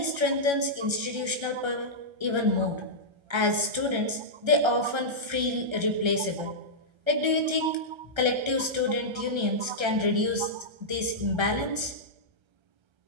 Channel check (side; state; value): left; late; 1.3 ms